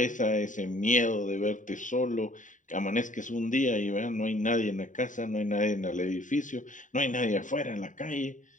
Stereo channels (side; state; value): right; late; 0.37 ms